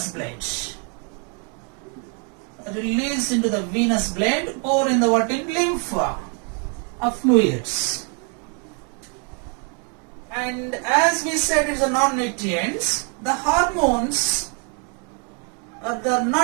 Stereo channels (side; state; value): left; quieter; 38.9 dB